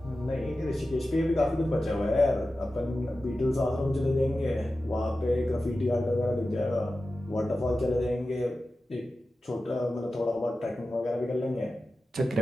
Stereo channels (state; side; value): normal; both; correlation 0.94